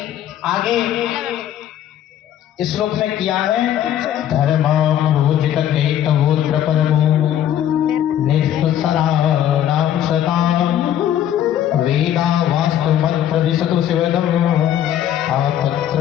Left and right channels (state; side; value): quieter; right; 10.9 dB